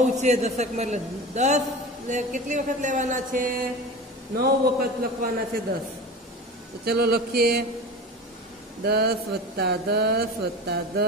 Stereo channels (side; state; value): both; normal; correlation 0.32